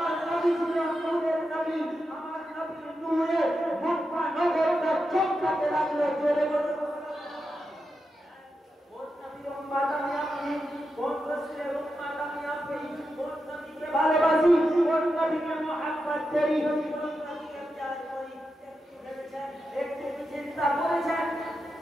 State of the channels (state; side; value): normal; both; correlation 0.88